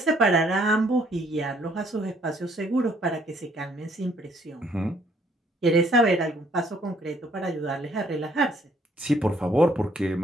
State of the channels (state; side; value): normal; both; correlation 0.65